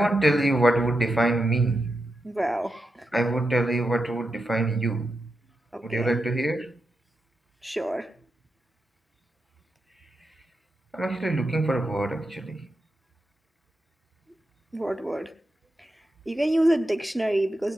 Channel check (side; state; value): both; normal; correlation 0.87